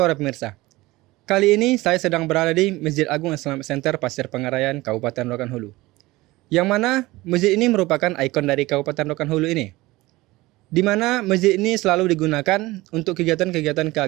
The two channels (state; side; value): quieter; left; 19.8 dB